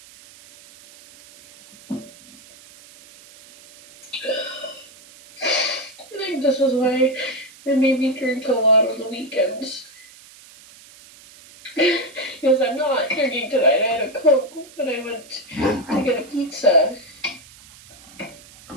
I think this is why it made me drink a lot on the weekends. Because I'm not drinking tonight. I had a Coke when I went to get a pizza. And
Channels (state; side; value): noise; right; hiss, 22 dB below the sound